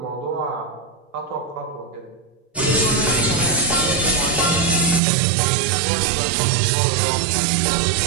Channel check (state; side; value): drops out; left; at 5.0 s